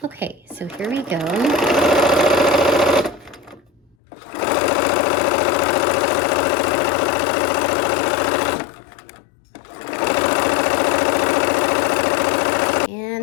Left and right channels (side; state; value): right; drops out; at 4.0 s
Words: Okay, so here we go.